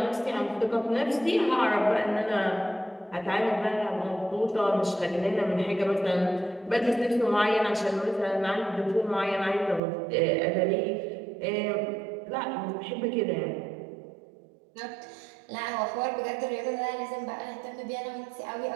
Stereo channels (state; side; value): drops out; left; at 9.8 s